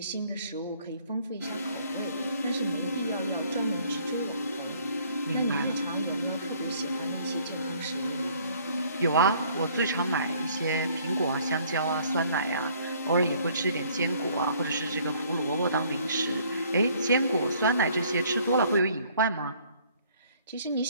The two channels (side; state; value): both; inverted; correlation -0.60